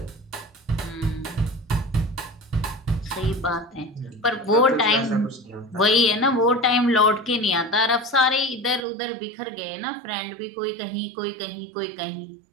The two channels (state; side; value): drops out; left; at 8.8 s